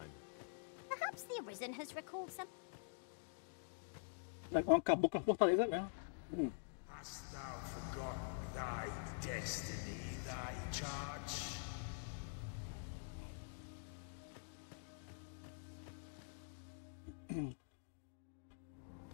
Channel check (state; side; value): silent; right; digital silence